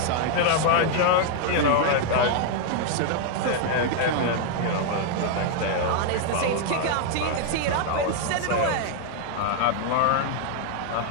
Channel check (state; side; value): different; both; correlation 0.00